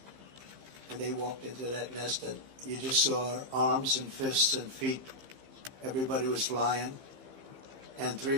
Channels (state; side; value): late; left; 15 ms